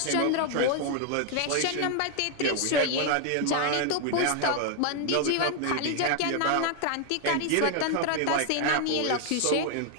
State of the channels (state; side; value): different; both; correlation 0.00